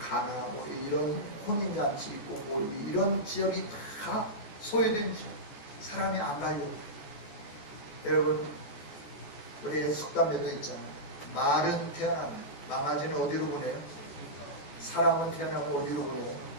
이런 혼인잔치 있고 이런 지역이 다 소유된 지역. 사람이 안 가려고. 여러분, 우리 속담에도 있잖아요. 말은 태어나면 망아지는 어디로 보내요? 사람은 태어나면 어디로 보내요?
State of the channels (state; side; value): late; right; 14 ms